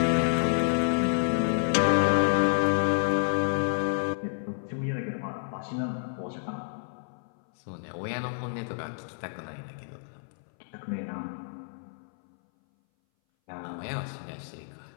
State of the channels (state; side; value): silent; right; 58 dB below the other